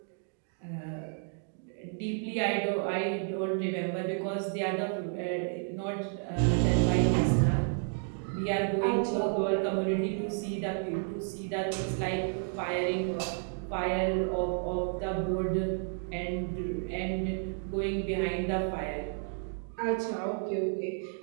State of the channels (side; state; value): left; silent; 57 dB below the other